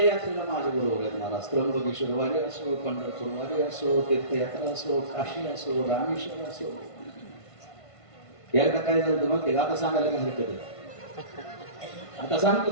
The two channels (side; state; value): right; late; 1.5 ms